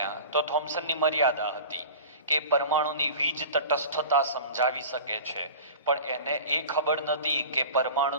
તો થોમ્સનની મર્યાદા હતી કે પરમાણુની વીજ તટસ્થતા સમજાવી શકે છે, પણ એને એ ખબર નથી કે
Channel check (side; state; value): both; inverted; correlation -0.37